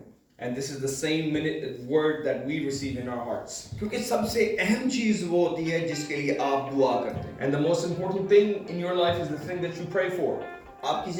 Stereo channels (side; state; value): both; identical; correlation 1.00